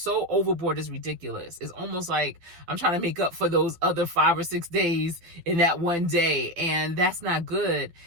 overboard, it's ridiculous. It's almost like I'm trying to make up for those other 5 or 6 days in that one day, and that's not good.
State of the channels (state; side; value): late; left; 12 ms